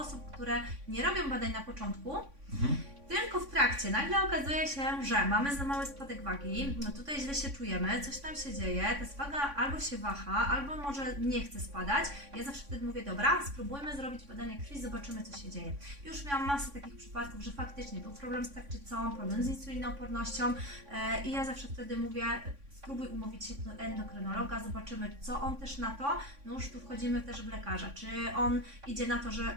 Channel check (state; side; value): late; left; 3.6 ms